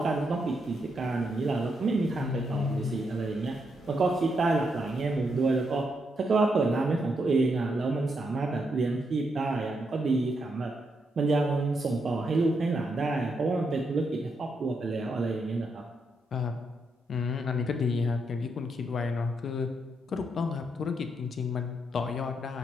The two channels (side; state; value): both; normal; correlation 0.80